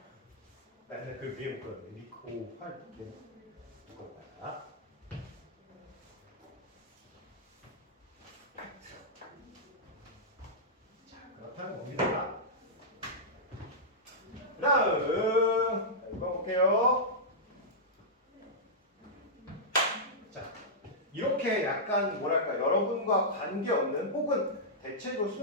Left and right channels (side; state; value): both; normal; correlation -0.11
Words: 나 옛날에 그 위에 못 그렸는데 리코 활 이거 봐라. 자, 그렇다는 겁니다. 다음 이거 볼게요. 자, 이렇게 약간 뭐랄까 여러분과 관계없는 혹은 대체로